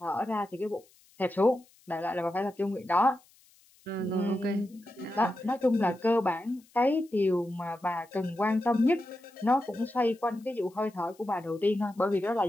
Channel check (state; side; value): noise; left; hiss, 30 dB below the sound